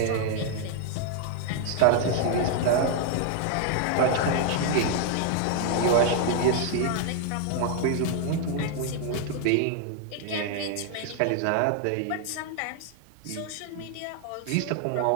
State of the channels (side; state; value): both; different; correlation 0.00